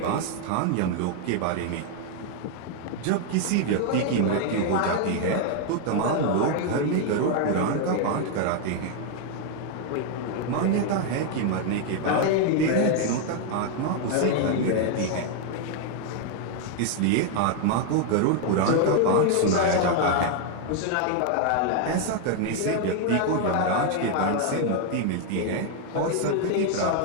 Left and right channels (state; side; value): different; both; correlation 0.00